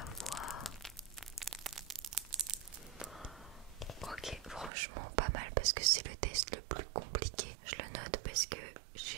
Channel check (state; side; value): drops out; left; at 4.7 s